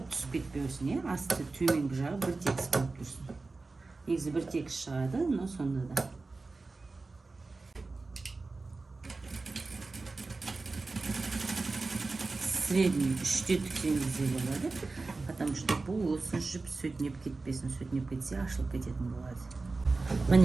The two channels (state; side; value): quieter; left; 3.7 dB